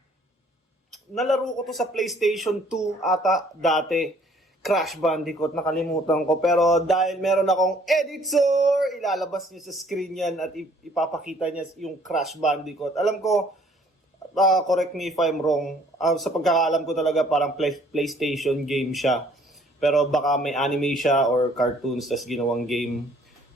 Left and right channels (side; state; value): both; normal; correlation 0.59